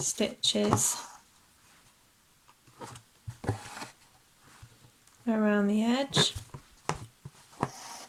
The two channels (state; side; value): identical; both; correlation 1.00